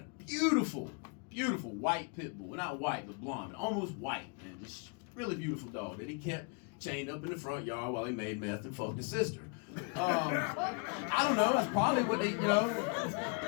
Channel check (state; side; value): quieter; right; 35.2 dB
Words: beautiful, beautiful white pit bull. Not white, but blonde. Almost white, man. This really beautiful dog that he kept chained up in the front yard while he made meth and fucked his sister. I don't know. That's probably what they, you know.